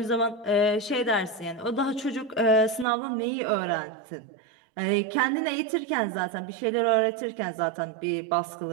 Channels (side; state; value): left; drops out; at 2.9 s